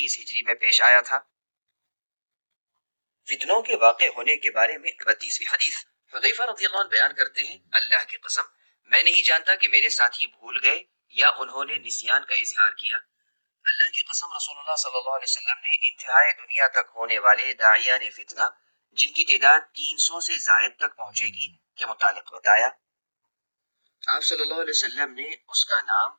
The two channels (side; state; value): both; inverted; correlation -1.00